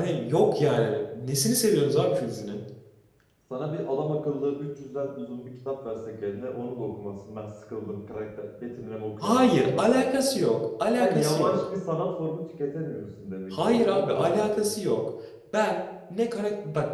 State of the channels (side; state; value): both; identical; correlation 1.00